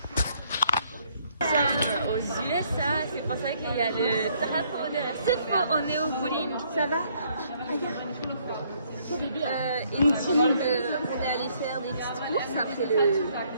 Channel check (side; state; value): both; inverted; correlation -0.67